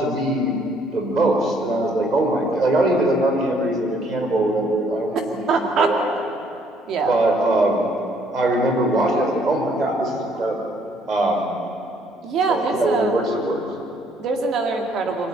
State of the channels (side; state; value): both; normal; correlation 0.65